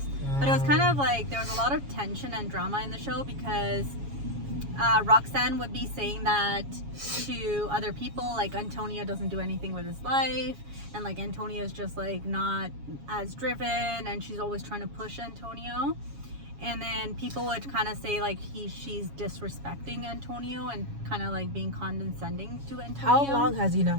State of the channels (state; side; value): late; left; 7.2 ms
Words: But it was kind of like there was a lot of tension and drama in the show because Roxanne would be saying that to other people, like Antonio doesn't do anything with his life, and like Antonio is just like not as driven, and she's always trying to push Antonio. And then people would kind of say like she's disrespecting Antonio and kind of like being condescending to Antonio. How long has he not